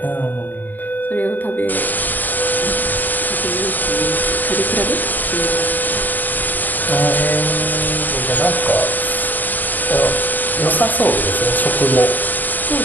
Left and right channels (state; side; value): late; right; 0.086 ms